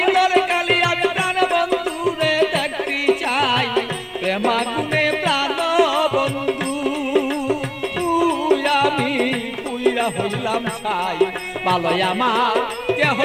প্রেমাগুনে প্রাণ বন্ধু আমি পুইরা হইলাম ছাই। ভালোই আমার কেহ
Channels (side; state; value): both; identical; correlation 1.00